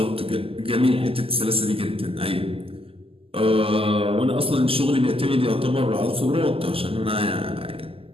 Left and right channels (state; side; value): late; left; 0.27 ms